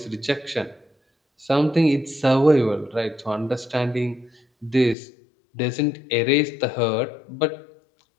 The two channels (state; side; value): drops out; right; at 5.0 s